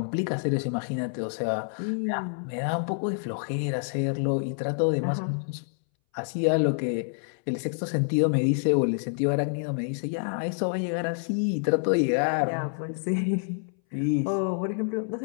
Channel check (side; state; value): right; silent; 60 dB below the other